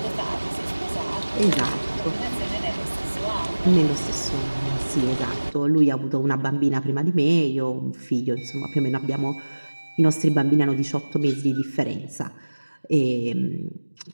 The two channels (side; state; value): both; inverted; correlation -1.00